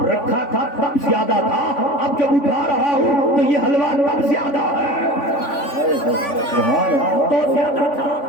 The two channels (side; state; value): right; late; 3.5 ms